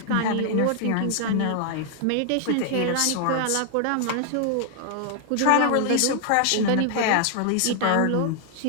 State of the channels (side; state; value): both; different; correlation 0.00